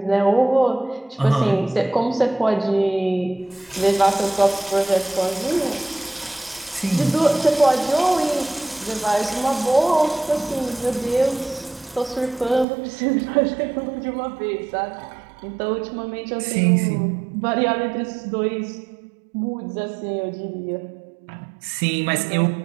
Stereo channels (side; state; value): left; drops out; at 12.7 s